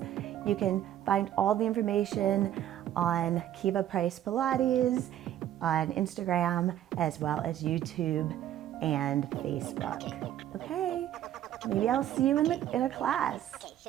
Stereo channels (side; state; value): left; quieter; 11.7 dB